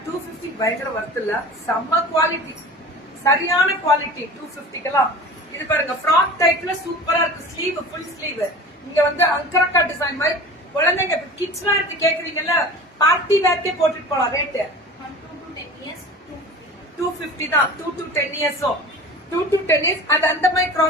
250 பயங்கர வர்த் இல்ல, செம்ம குவாலிட்டி, சரியான குவாலிட்டி 250க்குலாம். இது பாருங்க ஃப்ராக் டைப்ல சூப்பரா இருக்கு. Sleeve full sleeve. இங்க வந்து அங்கரக்கா டிசைன் மாதிரி குழந்தைங்க கிட்ஸ் வேர் கேக்குறீங்கல்ல, பார்ட்டி வேர்க்கே போட்டுட்டு போலாம். ரேட் 250 தான். 2 to 10 years 2 to 10 years அது அந்த மாதிரி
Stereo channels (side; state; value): both; normal; correlation 0.38